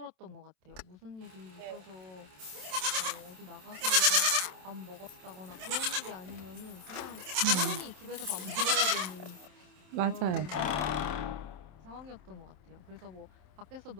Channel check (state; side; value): late; left; 27 ms